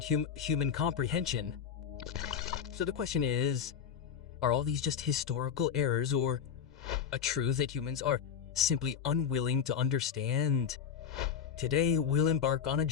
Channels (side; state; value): right; quieter; 7.7 dB